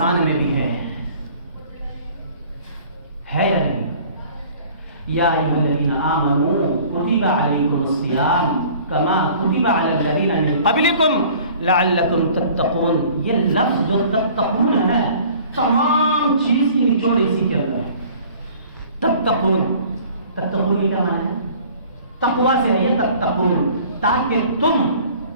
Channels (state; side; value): inverted; both; correlation -0.50